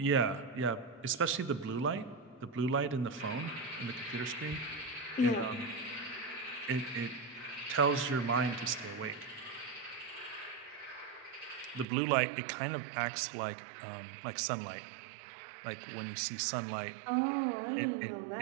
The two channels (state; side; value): drops out; left; at 11.9 s